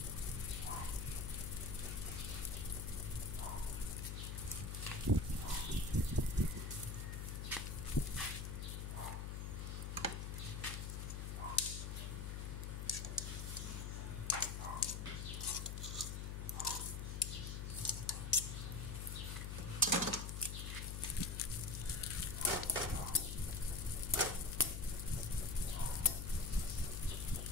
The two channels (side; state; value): left; noise; hum, 4 dB below the sound